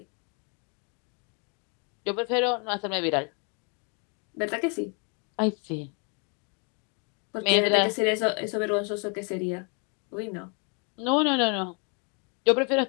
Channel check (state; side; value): quieter; right; 36.6 dB